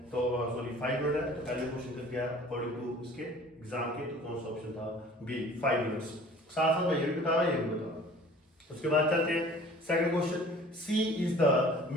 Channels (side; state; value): both; normal; correlation 0.48